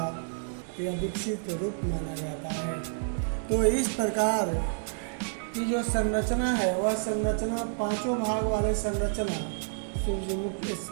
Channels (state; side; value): silent; left; digital silence